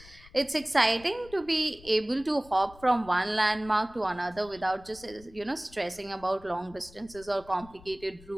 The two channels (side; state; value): left; noise; rumble, 22 dB below the sound